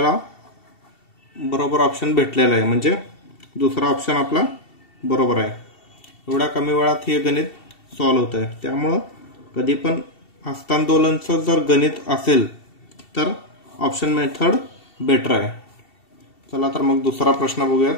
बरोबर ऑप्शन भेटलेला आहे, म्हणजे दुसरा ऑप्शन आपला बरोबर आहे. एवढ्या कमी वेळात हे गणित सॉल्व्ह होत आहे. त्यामुळं कधी पण हस्तांदोलनचं जर गणित असेल तर ऑप्शन मेथड बेटर आहे. चला तर मग दुसरा प्रश्न बघूयात.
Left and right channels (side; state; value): right; late; 2.7 ms